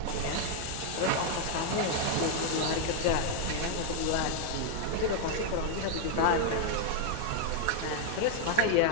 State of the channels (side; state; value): both; different; correlation 0.00